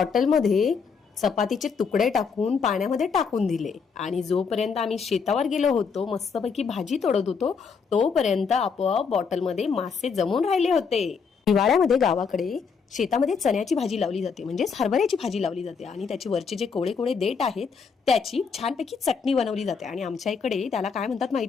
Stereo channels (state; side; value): quieter; right; 5.7 dB